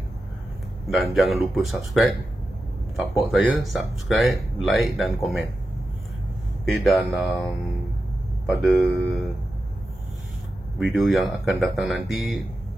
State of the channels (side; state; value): both; normal; correlation 0.91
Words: Dan jangan lupa subscribe, support saya, subscribe, like dan komen. Okay, dan pada video yang akan datang nanti